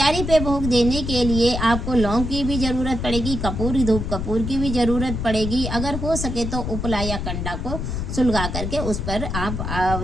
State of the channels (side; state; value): left; noise; rumble, 4 dB below the sound